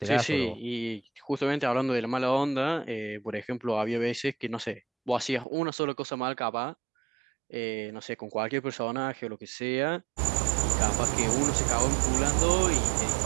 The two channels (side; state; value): left; drops out; at 5.5 s